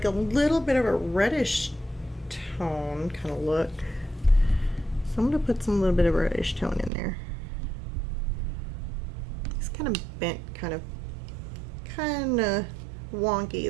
a little bit of a reddish tone kind of look. So I'm going to put some little bit of reddish tone in there. It's kind of bent, kind of wonky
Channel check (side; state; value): left; drops out; at 6.9 s